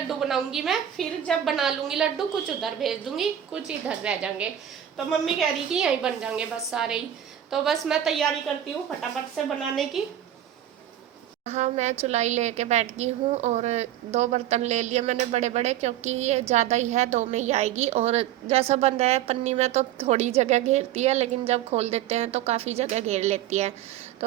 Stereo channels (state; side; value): quieter; left; 11.3 dB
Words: बनाऊंगी मैं। फिर जब बना लूंगी लड्डू, कुछ उधर भेज दूंगी, कुछ इधर रह जाएंगे। तो मम्मी कह रही कि यहीं बन जाएंगे बस सारे ही। तो बस मैं तैयारी करती हूँ फटाफट से बनाने की। हाँ, मैं चुलाई लेके बैठ गई हूँ और 2 बर्तन ले लिए मैंने बड़े बड़े, क्योंकि ये ज़्यादा ही है, 2 में ही आएगी। और जैसा बंद है पन्नी में तो थोड़ी जगह घेरती है, लेकिन जब खोल देते हैं तो काफ़ी जगह घेर लेती है।